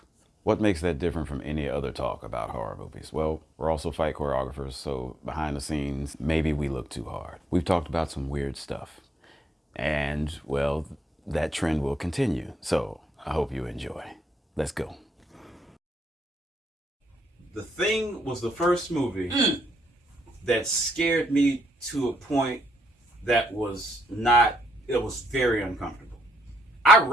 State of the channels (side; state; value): both; normal; correlation 0.76